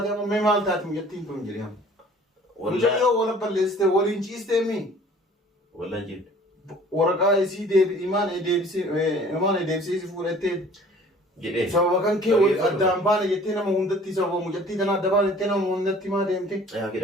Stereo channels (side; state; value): both; normal; correlation 0.50